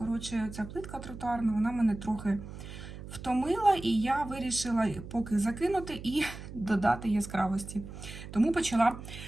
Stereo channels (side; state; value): right; noise; hum, 12 dB below the sound